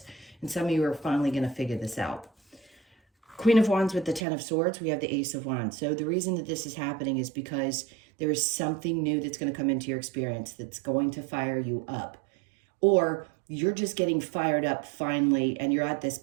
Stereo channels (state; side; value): drops out; left; at 4.2 s